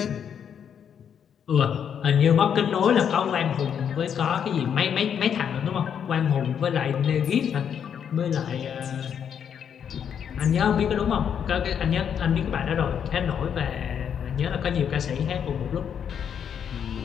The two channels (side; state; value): right; quieter; 8.1 dB